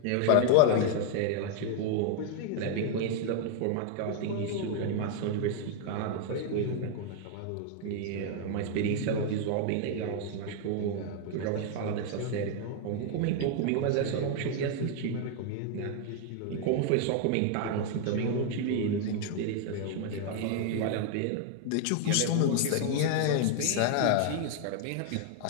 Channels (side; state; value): both; different; correlation 0.00